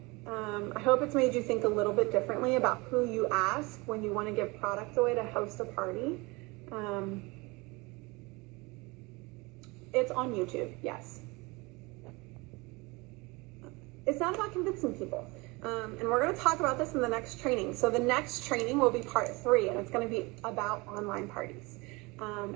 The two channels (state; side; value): quieter; left; 25.3 dB